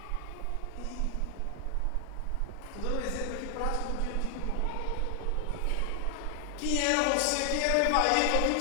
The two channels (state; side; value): different; both; correlation 0.00